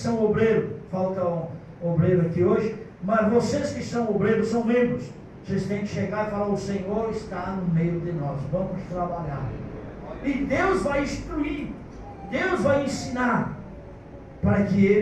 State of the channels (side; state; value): both; identical; correlation 1.00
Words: obreiros, falta um obreiro aqui hoje, mas vocês que são obreiros, são membros, vocês têm que chegar e falar, o Senhor está no meio de nós, vamos trabalhar. E Deus vai instruir, Deus vai ensinar, para que